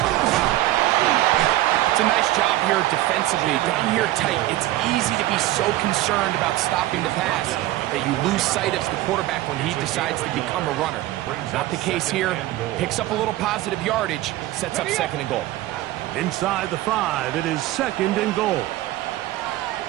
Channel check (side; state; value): left; quieter; 15.9 dB